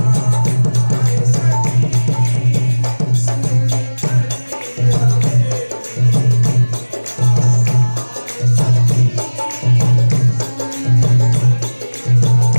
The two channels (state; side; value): inverted; both; correlation -1.00